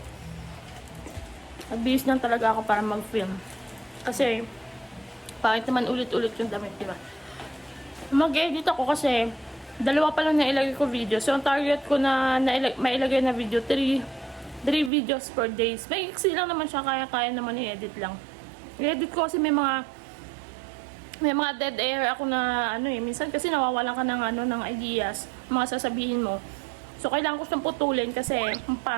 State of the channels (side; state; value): left; drops out; at 14.9 s